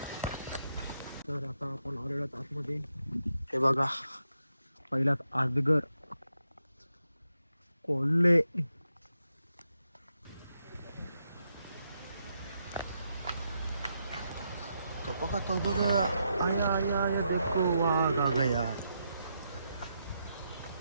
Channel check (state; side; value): inverted; both; correlation -0.82